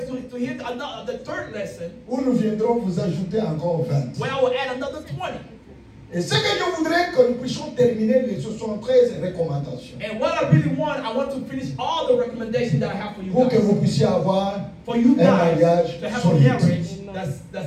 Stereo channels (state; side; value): identical; both; correlation 1.00